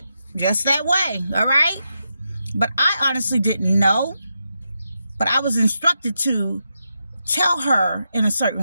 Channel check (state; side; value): inverted; both; correlation -0.85